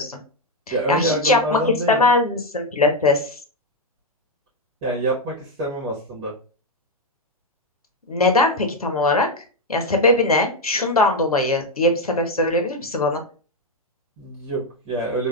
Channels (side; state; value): both; normal; correlation 0.06